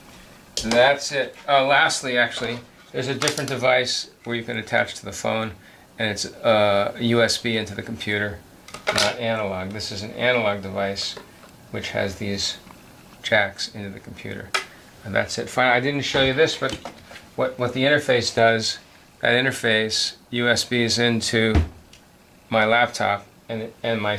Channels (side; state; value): both; identical; correlation 1.00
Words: that's it. Lastly, actually, there's a different device where you can attach to the phone, and it's USB into the computer, not analog. This is an analog device which has these jacks into the computer. And that's it. Fine. I didn't show you this, but what the interface does, that interface USB is into my laptop, and my